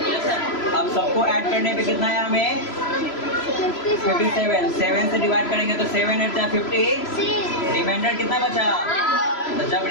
अब सबको ऐड करने पे कितना है हमें? 57। 7 से डिवाइड करेंगे तो 7 8 जा 50। रिमाइंडर कितना बचा? तो जब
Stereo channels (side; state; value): right; late; 3.0 ms